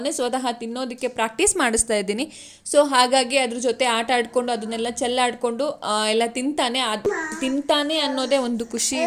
ಸ್ವತಃ ತಿನ್ನೋದಕ್ಕೆ ಪ್ರಾಕ್ಟೀಸ್ ಮಾಡಿಸ್ತಾ ಇದ್ದೀನಿ. ಸೊ ಹಾಗಾಗಿ ಅದ್ರ ಜೊತೆ ಆಟ ಆಡ್ಕೊಂಡು ಅದನ್ನೆಲ್ಲ ಚೆಲ್ಲಾಡ್ಕೊಂಡು ಎಲ್ಲ ತಿಂತಾನೆ ಅನ್ನೋದೇ ಒಂದು ಖುಷಿ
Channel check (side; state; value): both; identical; correlation 1.00